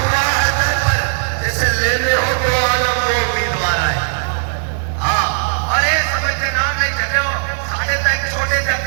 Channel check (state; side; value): silent; left; 68 dB below the other